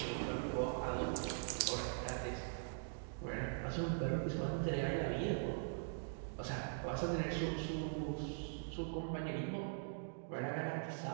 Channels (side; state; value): left; silent; digital silence